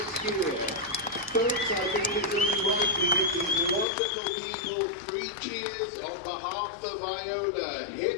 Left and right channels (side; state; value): right; drops out; at 3.9 s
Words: year. Folks, I think it's only right we give these wonderful people 3 cheers on behalf of Iona.